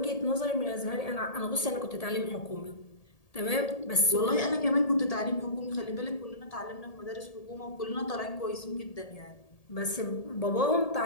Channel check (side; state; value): right; late; 1.8 ms